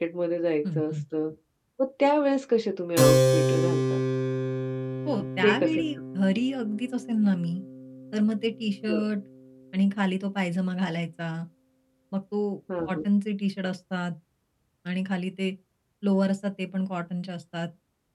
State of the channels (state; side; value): identical; both; correlation 1.00